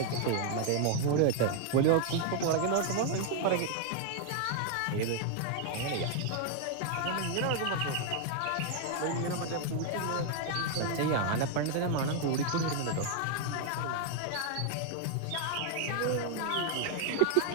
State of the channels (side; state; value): both; different; correlation 0.00